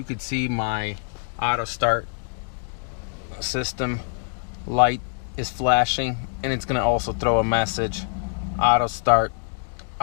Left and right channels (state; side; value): silent; right; 56 dB below the other